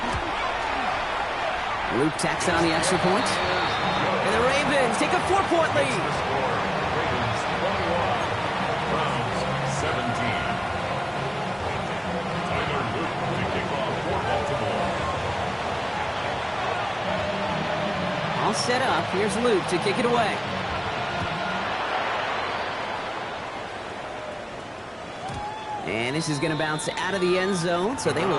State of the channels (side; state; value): both; identical; correlation 1.00